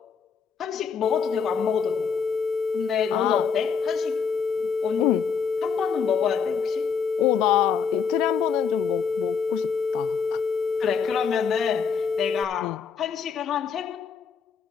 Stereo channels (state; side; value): quieter; right; 6.2 dB